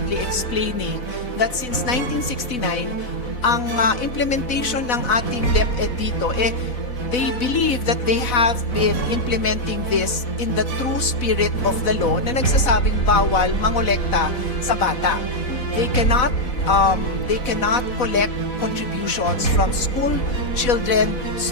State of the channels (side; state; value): right; late; 4.0 ms